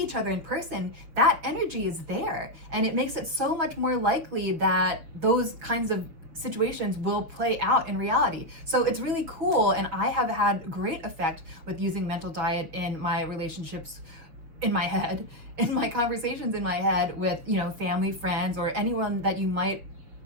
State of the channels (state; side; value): late; left; 6.3 ms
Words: other in person, that energy is there. And it makes it so much more likely that those kinds of situations will play out in reality. So it's really cool, and I have had great effect with using mental diet in my relationships in my head, in my conversations in my head with, family, friends, or anyone that you might